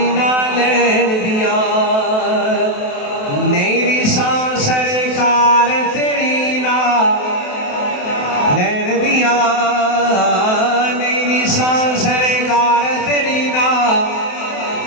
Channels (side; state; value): right; late; 28 ms